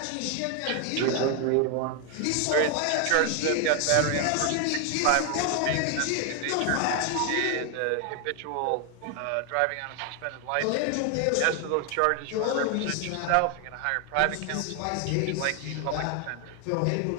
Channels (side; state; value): both; different; correlation 0.01